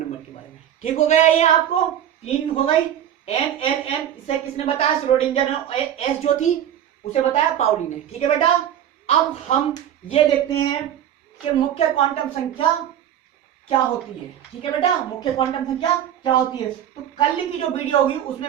के बारे में। ठीक हो गया, ये आपको 3 हो गई। NLM इसे किसने बताया? श्रोडिंगर ने। एस जो थी उसे बताया पाउली ने। ठीक है बेटा, अब हम ये देखते हैं कि मुख्य क्वांटम संख्या क्या होती है। ठीक है बेटा, मुख्य क्वांटम संख्या क्या होती है। तो कल की जो वीडियो होगी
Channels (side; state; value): left; quieter; 10.4 dB